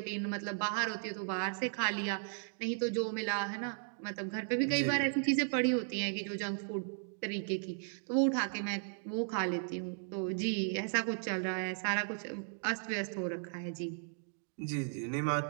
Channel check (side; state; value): left; silent; digital silence